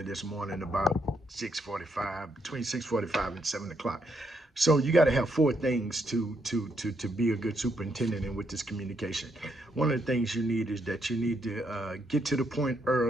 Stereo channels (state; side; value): normal; both; correlation 0.76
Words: this morning about 6:45, between 6:45 and 7 o'clock. So you got to have four things to be a good superintendent and with this communication. One of the things you need is that you need to get to the point